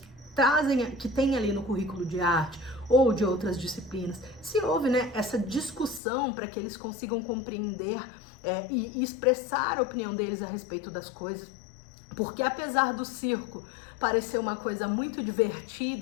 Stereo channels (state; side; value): drops out; right; at 6.0 s